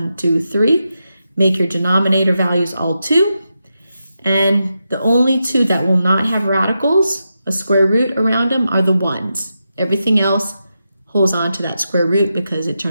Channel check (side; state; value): both; inverted; correlation -0.87